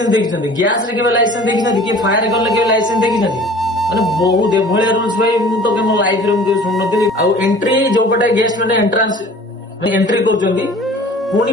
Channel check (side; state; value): both; normal; correlation 0.46